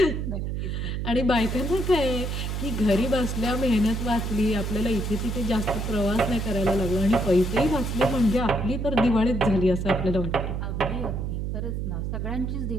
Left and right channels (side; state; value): right; noise; hum, 2 dB below the sound